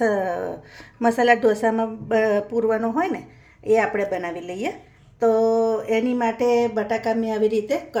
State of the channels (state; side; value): identical; both; correlation 1.00